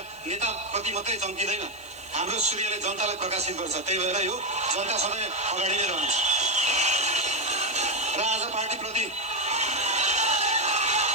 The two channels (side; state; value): right; noise; hiss, 25 dB below the sound